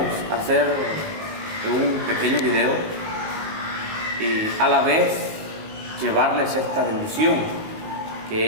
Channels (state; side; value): late; left; 19 ms